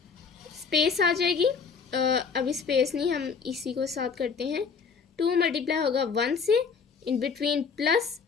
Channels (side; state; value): right; quieter; 5.6 dB